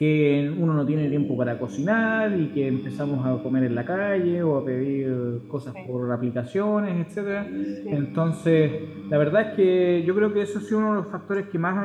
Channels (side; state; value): both; identical; correlation 1.00